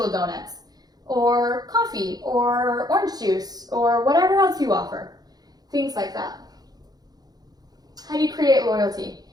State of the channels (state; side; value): late; left; 0.19 ms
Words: donuts or coffee or orange juice or whatever else you offer? Things like that. How do you create loyalty?